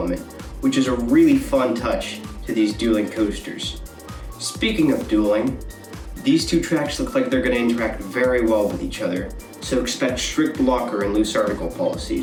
which is a really fun touch to these dueling coasters. Speaking of dueling, these two tracks look like they're going to interact very well with each other, so expect strict blocker and loose article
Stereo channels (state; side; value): identical; both; correlation 1.00